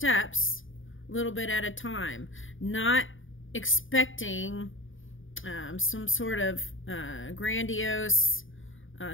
a little bit at a time, not expecting some sort of grandiose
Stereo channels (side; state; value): right; late; 0.57 ms